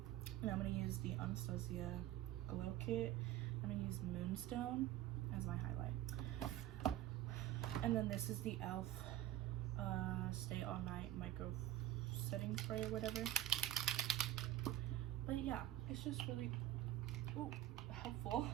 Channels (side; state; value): left; quieter; 13.4 dB